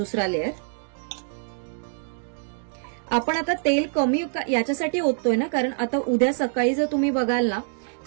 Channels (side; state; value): left; silent; digital silence